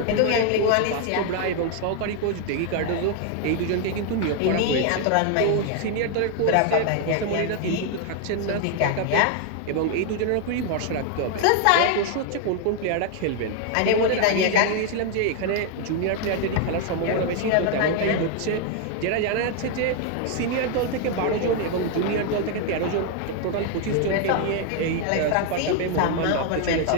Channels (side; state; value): both; different; correlation 0.01